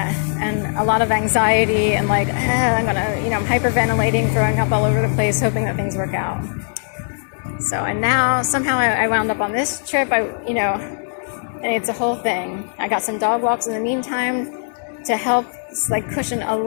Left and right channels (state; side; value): silent; right; digital silence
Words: and a lot of anxiety, and I'm hyperventilating, throwing up all over the place, hoping that things work out. So, and now somehow I wound up on this trip. And it's a whole thing. I got some dog walks in the meantime to help cushion a